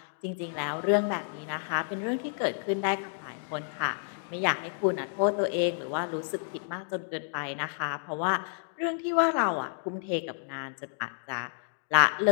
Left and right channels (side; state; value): right; silent; digital silence